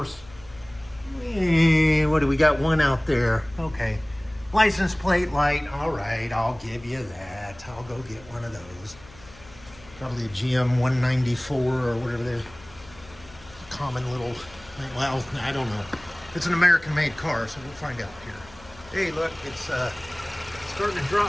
what do we got? One out there. Okay. License plate light. All right, I'll give you that. I'll go get one of those. Probably a GM 194 or whatever they're common little, well, I don't know. It's an American-made car, so we'll find out here. Hey, look, it's starting to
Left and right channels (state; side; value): noise; left; hum, 22 dB below the sound